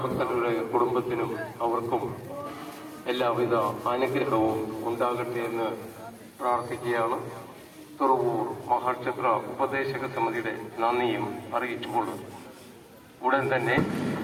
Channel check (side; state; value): both; identical; correlation 1.00